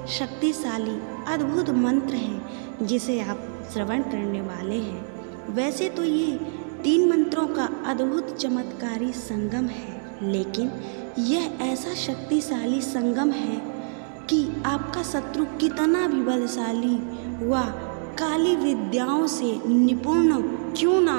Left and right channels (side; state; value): left; silent; digital silence